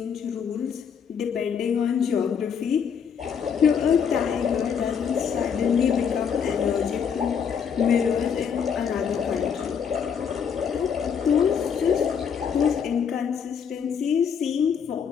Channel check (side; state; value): right; quieter; 7.1 dB